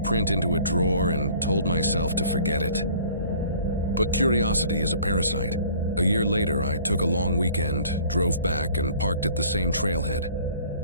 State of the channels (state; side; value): inverted; both; correlation -0.52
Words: into a drawer and told myself to forget it. But curiosity is a parasite. A year later, I took a long weekend, drove back, and parked at the same trailhead.